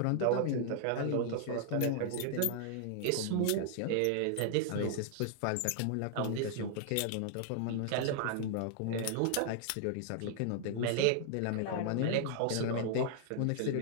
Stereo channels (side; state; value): both; different; correlation -0.01